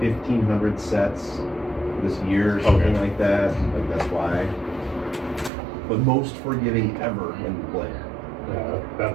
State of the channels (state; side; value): drops out; left; at 5.5 s